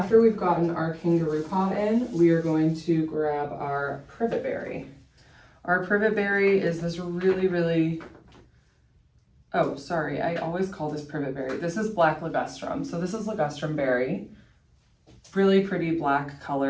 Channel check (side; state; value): both; identical; correlation 1.00